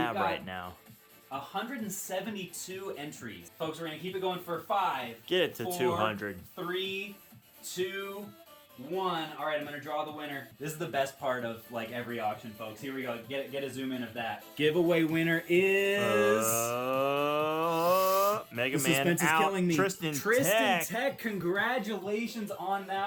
got right now. 172 entries. Folks, we're going to keep it going for 5. Get it to 4, 200. 3, 2, 1. All right, I'm going to draw the winner. This is the best part of like every auction, folks. Here we go. Get a zoom in of that. Giveaway winner is... Mega the Man suspense is out. killing me. Tristan Tech. Tech. Congratulations on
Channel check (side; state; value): both; identical; correlation 1.00